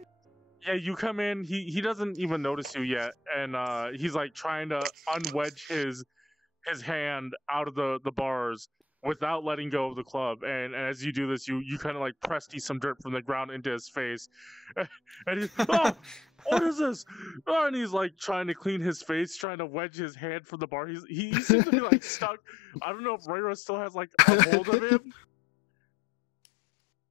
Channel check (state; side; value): drops out; right; at 19.5 s